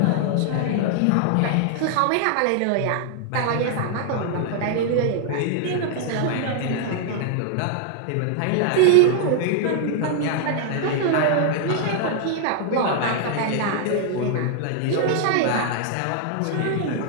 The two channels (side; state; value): both; different; correlation 0.00